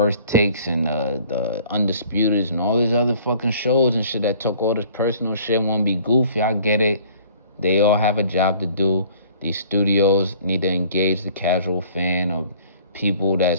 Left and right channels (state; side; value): inverted; both; correlation -0.53